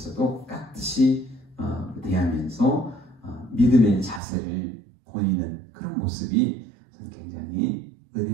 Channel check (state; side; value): drops out; left; at 4.2 s